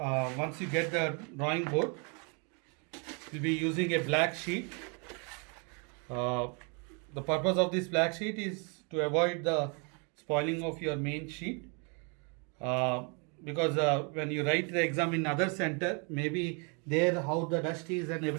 you get the drawing board, you'll be using a black sheet. The purpose of this black sheet is to avoid the spoiling of your main sheet. Because when you write the exam in other center, maybe there how the dust is and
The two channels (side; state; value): left; quieter; 35.3 dB